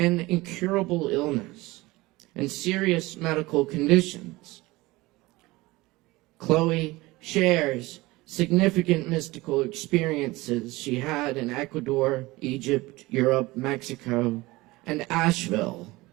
incurable illness and serious medical conditions. Chloe shares significant mystical experiences she had in Ecuador, Egypt, Europe, Mexico, and Asheville,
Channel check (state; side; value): quieter; left; 20.7 dB